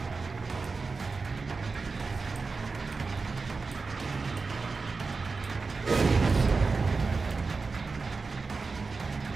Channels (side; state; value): left; quieter; 4.3 dB